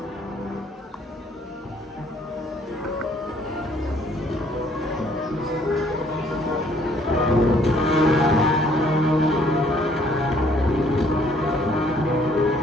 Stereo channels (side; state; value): both; normal; correlation 0.62